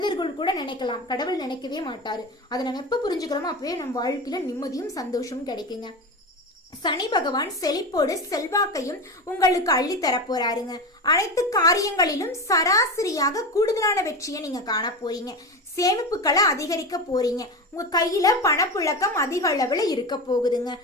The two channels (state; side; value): normal; both; correlation 0.23